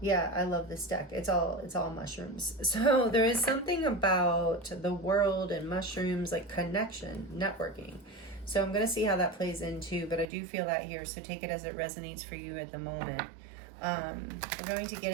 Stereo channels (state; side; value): drops out; left; at 10.2 s